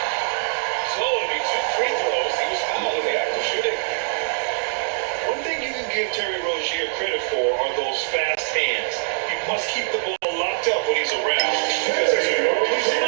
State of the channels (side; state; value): left; silent; digital silence